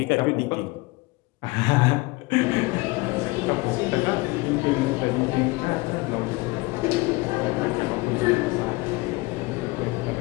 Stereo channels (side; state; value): right; quieter; 23.6 dB